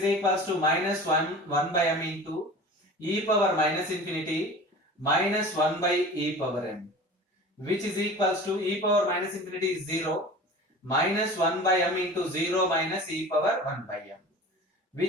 equals to minus 1 by m into e power minus infinity minus 1 by e power m, which is equals to e power minus infinity is 0 minus 1 by m into 0 minus e power 1 by m,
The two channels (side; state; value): both; normal; correlation 0.38